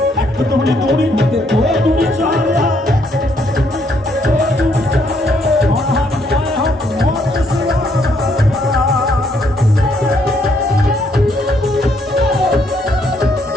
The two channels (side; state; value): both; normal; correlation 0.71